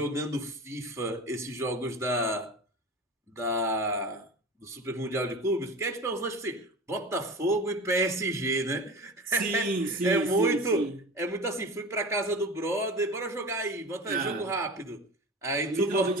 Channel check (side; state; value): both; normal; correlation 0.33